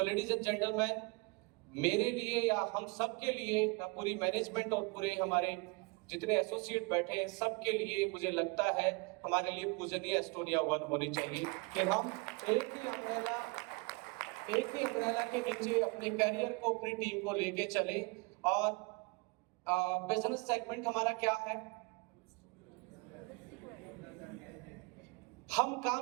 ladies and gentleman, मेरे लिए या हम सब के लिए, पूरी मैनेजमेंट और पूरे हमारे जितने एसोसिएट बैठे हैं सबके लिए मुझे लगता है हमारे लिए पूजनीय एस्टोनिया 1 होनी चाहिए कि हम एक ही अम्ब्रेला के नीचे अपने करियर को, अपनी टीम को लेके चले। और बिजनेस सेगमेंट हमारा क्या है? हम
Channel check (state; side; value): quieter; left; 28.4 dB